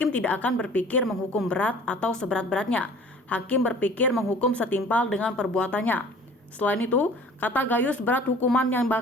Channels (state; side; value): normal; both; correlation 0.48